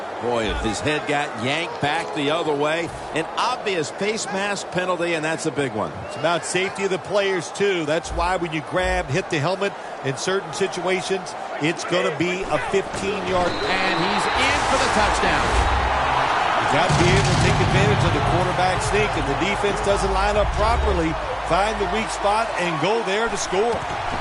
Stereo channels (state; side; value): identical; both; correlation 1.00